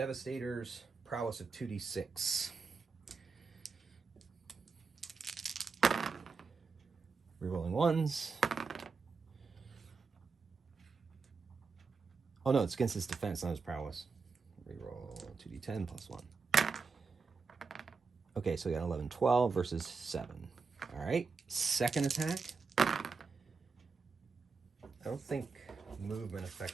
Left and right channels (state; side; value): quieter; left; 4.8 dB